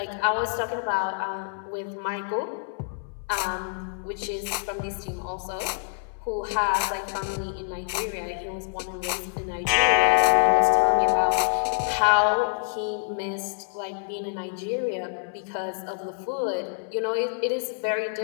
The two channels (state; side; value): silent; right; 60 dB below the other